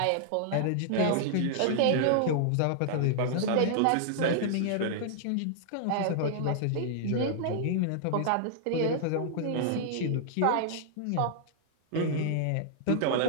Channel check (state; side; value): different; both; correlation -0.01